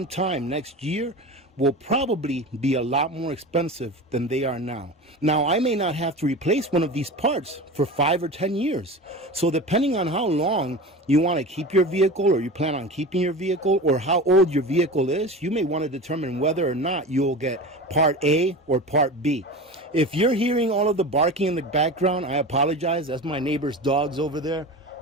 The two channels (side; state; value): both; normal; correlation 0.30